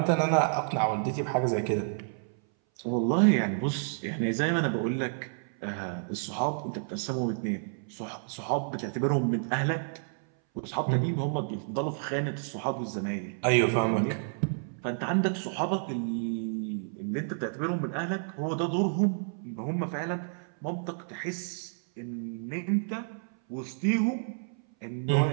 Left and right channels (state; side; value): silent; left; 58 dB below the other